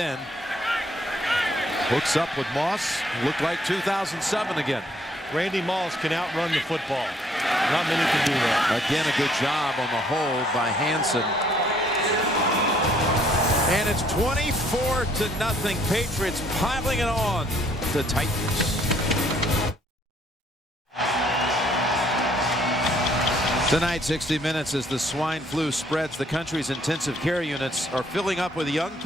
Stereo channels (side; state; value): both; normal; correlation 0.64